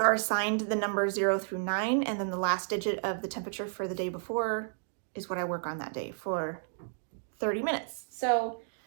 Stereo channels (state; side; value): silent; left; digital silence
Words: assigned the number 0 through 9, and then the last digit of the temperature for the day before is what I work on that day for 30 minutes. So